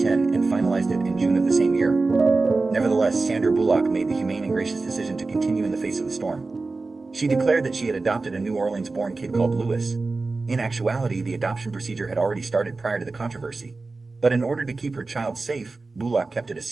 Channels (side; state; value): left; quieter; 3.7 dB